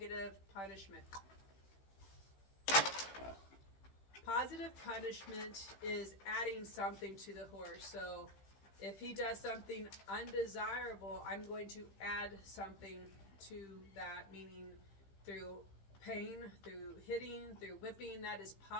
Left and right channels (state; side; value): late; right; 15 ms